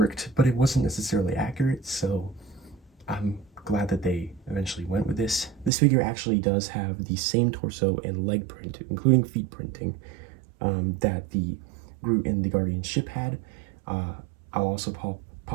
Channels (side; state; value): left; drops out; at 5.7 s